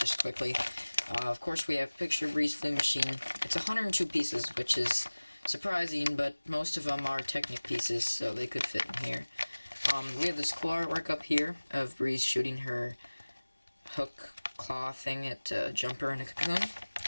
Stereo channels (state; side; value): inverted; both; correlation -1.00